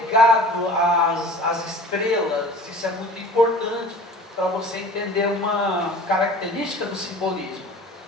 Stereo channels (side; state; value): both; normal; correlation 0.42